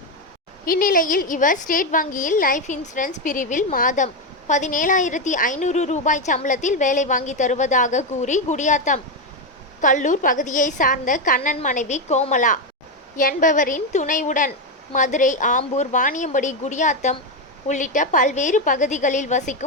இந்நிலையில் இவர் ஸ்டேட் வங்கியில் லைஃப் இன்சூரன்ஸ் பிரிவில் மாதம் 17,500 ரூபாய் சம்பளத்தில் வேலை வாங்கி தருவதாக கூறி குடியாத்தம் கல்லூர் பகுதியை சார்ந்த கண்ணன் மனைவி கோமலா என்பவரின் துணையுடன் மதுரை, ஆம்பூர், வாணியம்படி, குடியாத்தம் உள்ளிட்ட பல்வேறு பகுதிகளில்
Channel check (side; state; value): both; normal; correlation 0.08